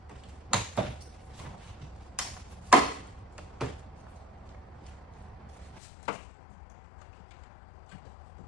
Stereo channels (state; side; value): drops out; right; at 5.8 s